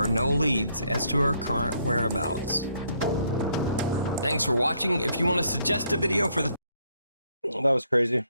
no leads as to her current whereabouts. Thanks for watching. If you want to suggest a video for the... That was crazy.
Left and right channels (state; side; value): inverted; both; correlation -0.70